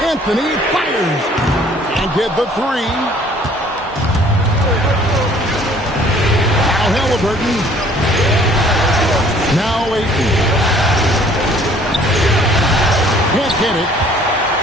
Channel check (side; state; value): both; normal; correlation 0.56